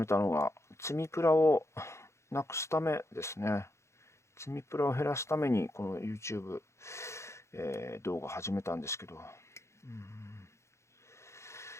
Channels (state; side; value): late; right; 0.13 ms